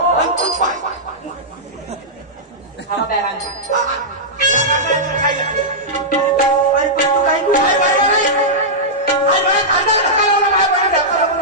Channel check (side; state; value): both; normal; correlation -0.11